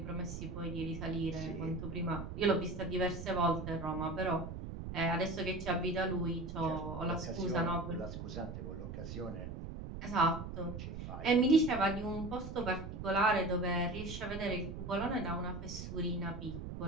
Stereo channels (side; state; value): right; noise; rumble, 8 dB below the sound